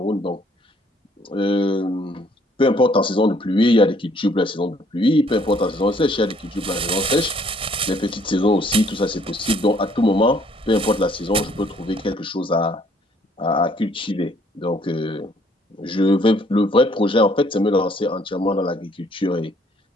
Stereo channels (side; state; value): both; normal; correlation 0.63